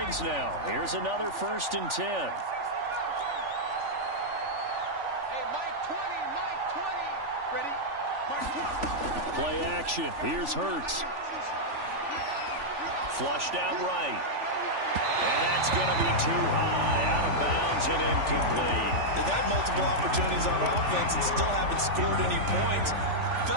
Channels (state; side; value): late; left; 3.4 ms